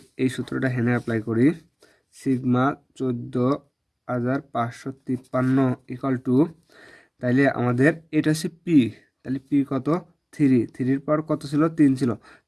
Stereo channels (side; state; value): both; identical; correlation 1.00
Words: এই সূত্রটা হেনে অ্যাপ্লাই করি, সিগমা 14,553 ইকুয়াল টু, তাইলে আমাদের এটা হচ্ছে পি, তাহলে পি কত 3, 3-এর পাওয়ার কত ছিল 3 ছিল,